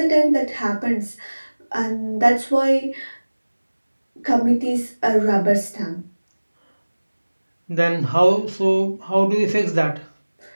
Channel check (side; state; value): both; inverted; correlation -1.00